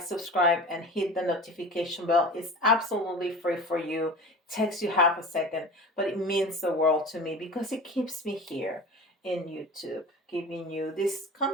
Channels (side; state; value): both; normal; correlation 0.36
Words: subscribe, and hit the notification bell. It's absolutely free for you. Takes you half a second, but it means the world to me, because it keeps me here in YouTube, giving you this